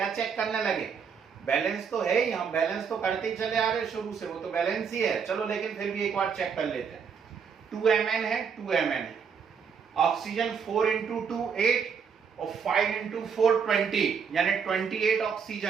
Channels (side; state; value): left; quieter; 6.5 dB